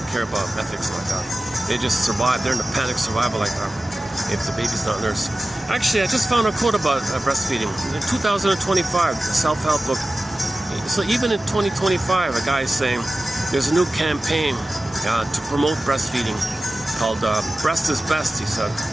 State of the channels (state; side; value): normal; both; correlation 0.95